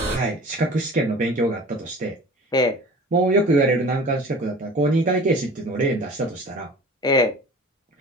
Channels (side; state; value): both; normal; correlation 0.42